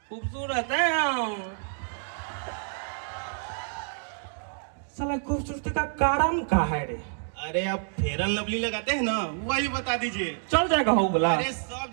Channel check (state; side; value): silent; left; digital silence